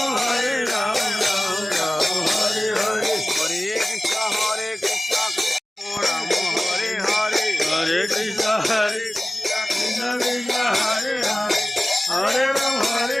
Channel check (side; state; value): both; normal; correlation 0.97